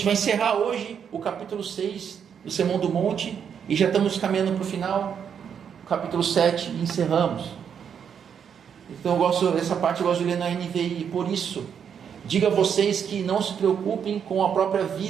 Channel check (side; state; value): left; quieter; 7.7 dB